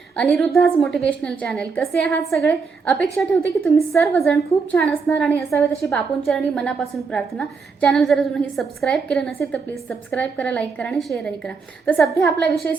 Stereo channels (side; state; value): left; quieter; 5.0 dB